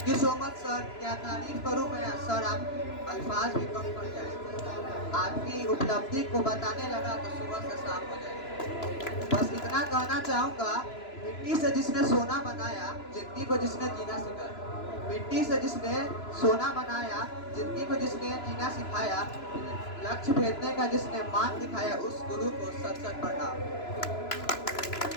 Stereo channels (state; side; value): late; right; 3.0 ms